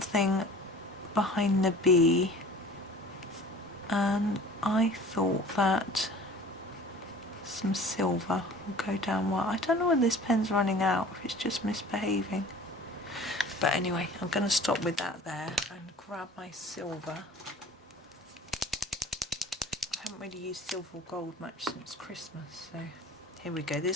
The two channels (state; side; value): normal; both; correlation 0.45